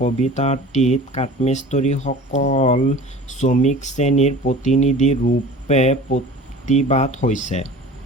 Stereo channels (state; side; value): normal; both; correlation 0.41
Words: কবিতাটিত কাঠমিস্ত্ৰীসকল শ্ৰমিক শ্ৰেণীৰ প্ৰতিনিধি ৰূপে প্ৰতিভাত হৈছে।